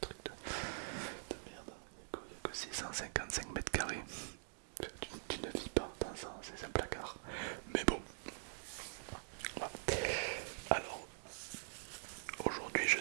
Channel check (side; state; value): left; silent; digital silence